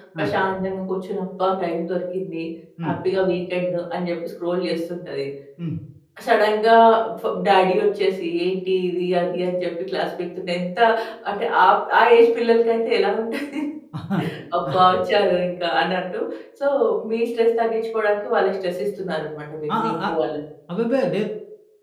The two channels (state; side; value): identical; both; correlation 1.00